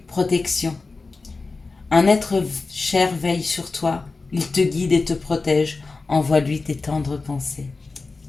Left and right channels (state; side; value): quieter; right; 3.9 dB